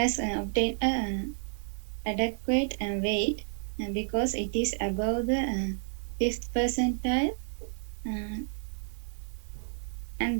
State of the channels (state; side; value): silent; left; digital silence